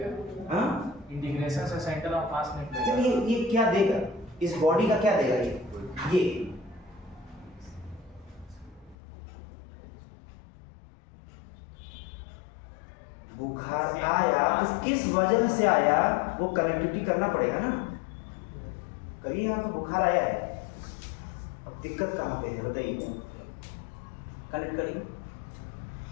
हाँ इंटीग्रेशन से सेंटर ऑफ मास निकलेगा। ये क्या देगा, इस बॉडी का क्या देगा, ये बुखार आया तो किस वजह से आया, वो कनेक्टिविटी करना पड़ेगा ना। करिए, यहाँ तो बुखार आया है, अब दिक्कत कहाँ पे है बताइए, कनेक्ट करिए।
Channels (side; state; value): right; drops out; at 9.0 s